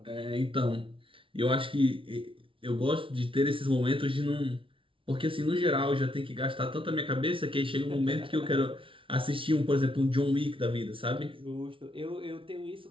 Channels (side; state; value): left; late; 0.25 ms